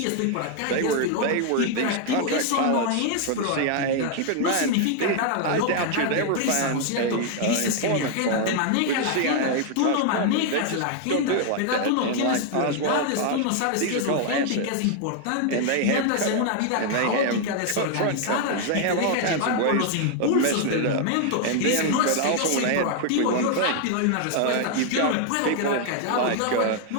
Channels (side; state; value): both; different; correlation 0.00